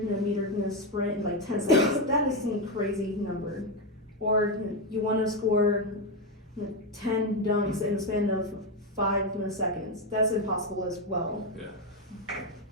sprint in like 10 seconds. That is some crazy number. Or you want to score 10 dunks in the span of 5 seconds. That's impossible as well. Yeah.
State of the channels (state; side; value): normal; both; correlation 0.08